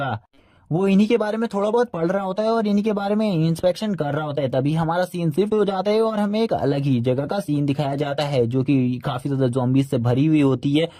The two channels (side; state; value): both; identical; correlation 1.00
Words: वो इन्हीं के बारे में थोड़ा बहुत पढ़ रहा होता है और इन्हीं के बारे में इंस्पेक्शन कर रहा होता है। तभी हमारा सीन शिफ्ट हो जाता है और हमें एक अलग ही जगह का सीन दिखाया जाता है, जो कि काफी ज्यादा ज़ॉम्बीज़ से भरी हुई होती है